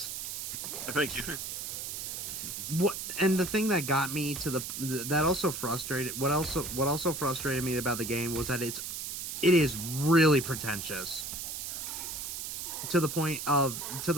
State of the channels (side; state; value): right; noise; hiss, 5 dB below the sound